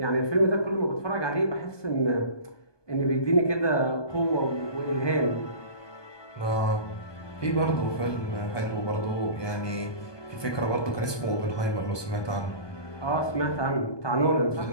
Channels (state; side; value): late; right; 1.2 ms